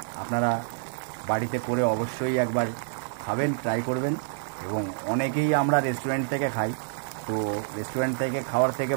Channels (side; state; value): left; silent; digital silence